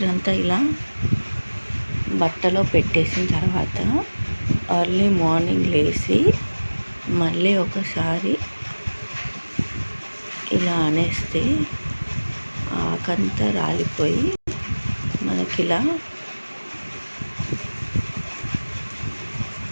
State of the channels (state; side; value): inverted; both; correlation -1.00